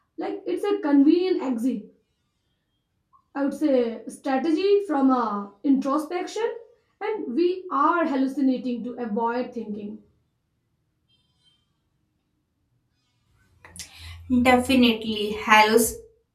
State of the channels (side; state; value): both; identical; correlation 1.00